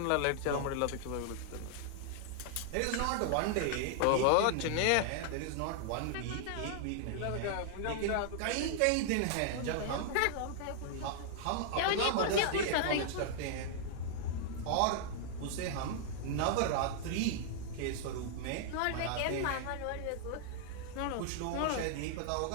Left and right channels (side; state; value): both; different; correlation -0.01